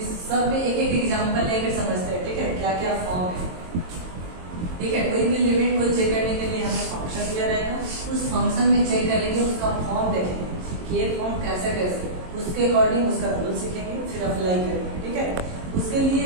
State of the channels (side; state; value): left; late; 22 ms